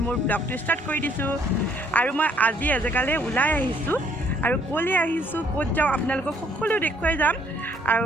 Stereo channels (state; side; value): normal; both; correlation 0.63